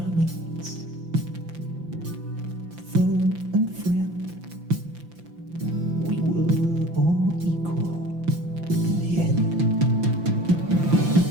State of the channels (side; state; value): left; late; 5.9 ms